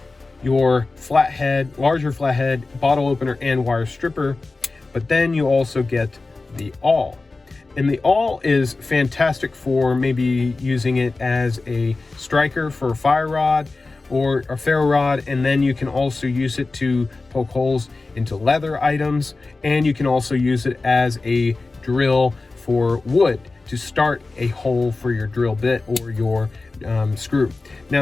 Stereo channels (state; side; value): quieter; right; 3.6 dB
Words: your flathead, larger flathead, bottle opener, and wire stripper. But then you also get the awl. And the awl is fantastic for maybe using it as a striker for a fire rod or a ferro rod, and then you can also use it to poke holes into leather items, and you can also use it as a drill for wood to start a hole for your drill bit or your screw.